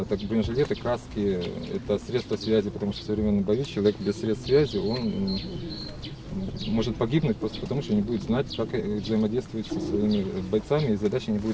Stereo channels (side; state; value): both; identical; correlation 1.00